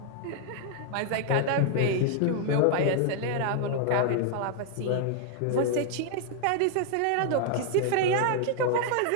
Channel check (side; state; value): both; different; correlation 0.00